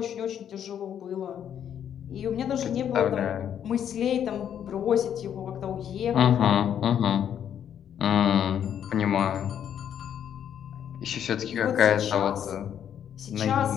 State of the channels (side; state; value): right; quieter; 9.3 dB